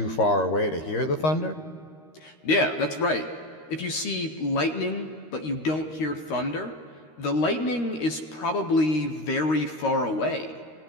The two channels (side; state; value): right; late; 13 ms